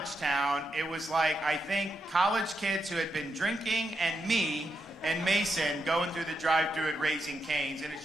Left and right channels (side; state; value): both; normal; correlation 0.83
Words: town, it was like, I think, college kids who had been drinking and me and Mason going through the drive-thru at Raising Cane's. And